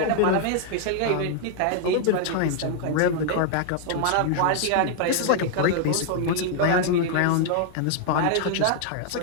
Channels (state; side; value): different; both; correlation 0.00